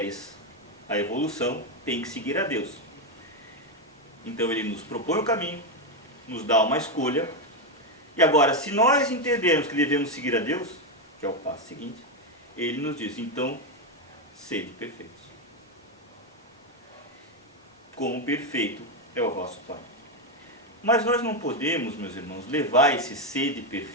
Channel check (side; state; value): both; normal; correlation 0.07